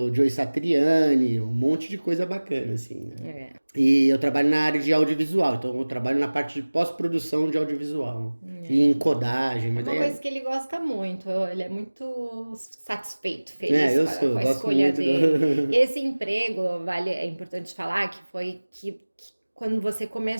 do Joe Satriani, um monte de coisa bacana, assim, né? É. E eu trabalho na área de audiovisual, então eu trabalho na parte de pós-produção de audiovisual e em codagem, É mas uma aí coisa que ele gosta muito, ele é muito satisfeito, feliz com eu a gosto escolha muito dele. do. Esse emprego, é importante falar que foi que quando você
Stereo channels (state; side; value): inverted; both; correlation -1.00